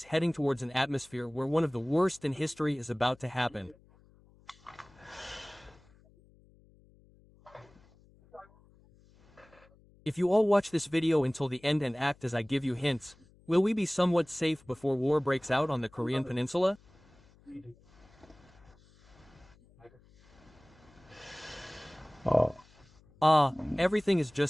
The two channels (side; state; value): left; noise; hum, 28 dB below the sound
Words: heading towards an atmosphere where one of the worst in history is about to happen. If you all watch this video until the end and act as I give you hints, will we be somewhat safe before war breaks out on the Korean Peninsula? Everything is